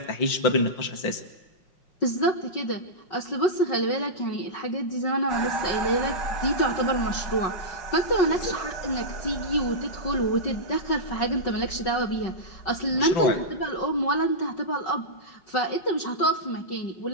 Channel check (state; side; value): late; right; 5.3 ms